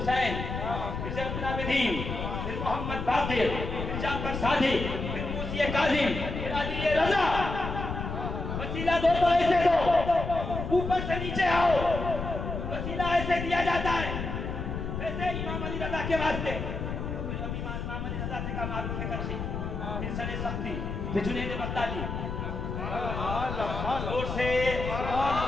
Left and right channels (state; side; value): noise; left; rumble, 5 dB below the sound